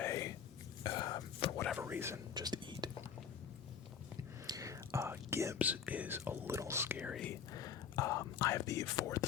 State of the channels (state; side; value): quieter; right; 7.6 dB